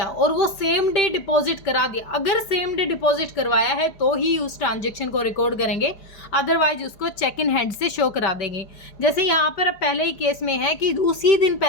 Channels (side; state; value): right; late; 4.8 ms